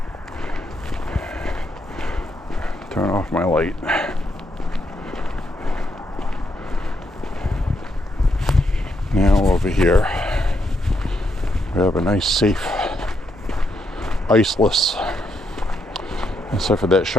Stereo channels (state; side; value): normal; both; correlation 0.78